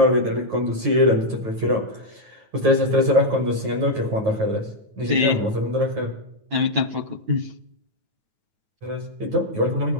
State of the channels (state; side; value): late; left; 9.2 ms